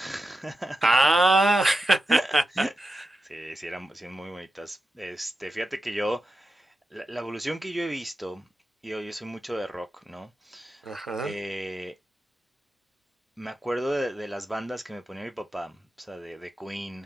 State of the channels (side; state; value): both; normal; correlation 0.90